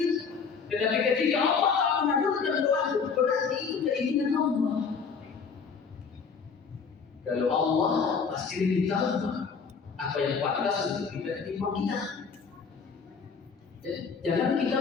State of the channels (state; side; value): quieter; right; 5.7 dB